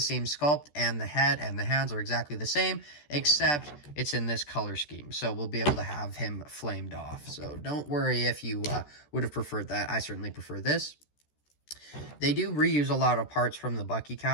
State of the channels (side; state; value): right; late; 14 ms